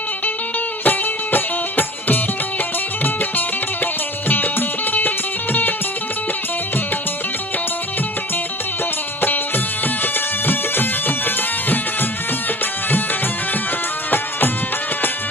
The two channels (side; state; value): both; normal; correlation 0.41